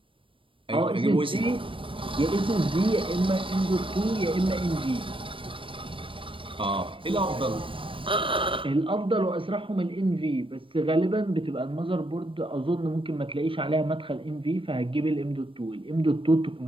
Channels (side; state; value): left; late; 0.25 ms